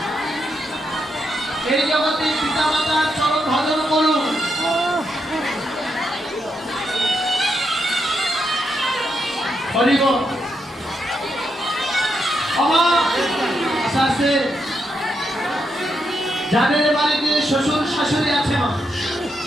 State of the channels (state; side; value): normal; both; correlation 0.82